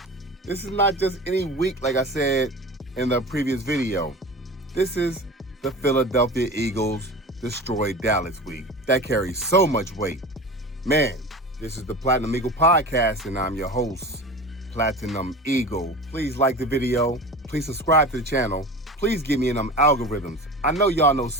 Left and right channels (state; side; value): normal; both; correlation 0.33